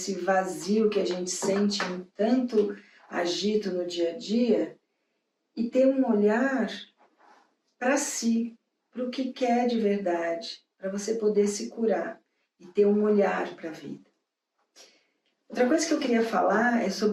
vazio que a gente sente em tanto agito no dia a dia e ter um olhar para si, para o que quer de verdade, para você poder se curar e ter um olhar para a vida. Outra coisa que eu queria falar é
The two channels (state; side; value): identical; both; correlation 1.00